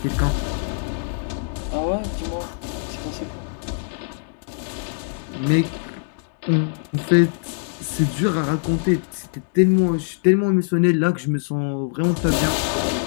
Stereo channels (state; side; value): silent; right; digital silence